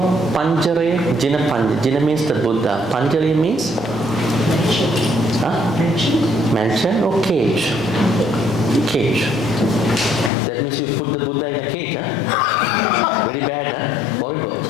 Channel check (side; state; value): right; drops out; at 10.3 s